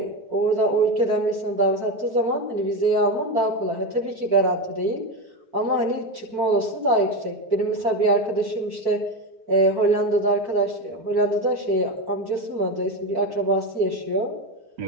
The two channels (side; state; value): left; late; 4.5 ms